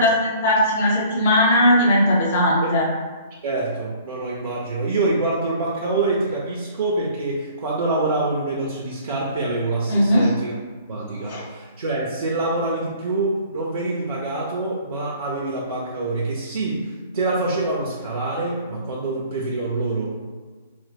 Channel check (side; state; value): both; inverted; correlation -0.52